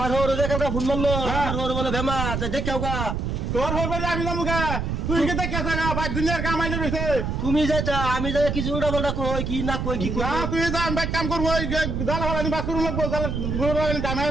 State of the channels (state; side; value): noise; right; rumble, 2 dB below the sound